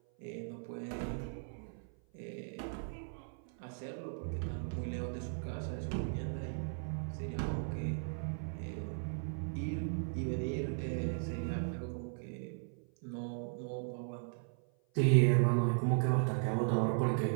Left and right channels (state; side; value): silent; left; 53 dB below the other